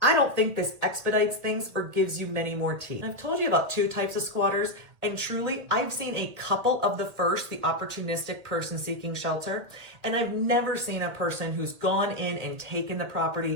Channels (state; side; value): late; left; 1.8 ms